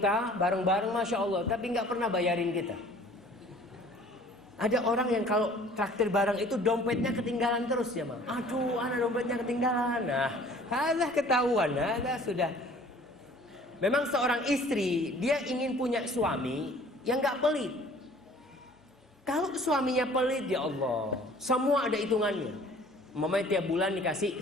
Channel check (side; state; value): both; normal; correlation 0.51